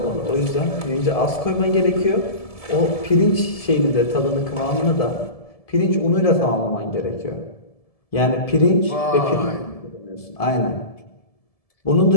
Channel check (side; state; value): right; late; 1.7 ms